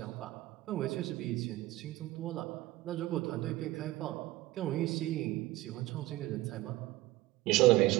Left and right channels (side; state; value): left; quieter; 17.8 dB